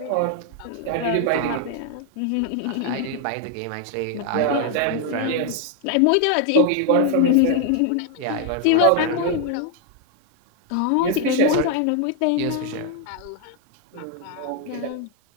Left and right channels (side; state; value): both; different; correlation 0.01